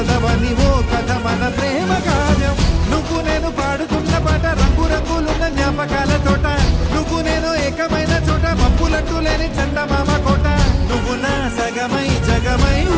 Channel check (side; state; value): both; identical; correlation 1.00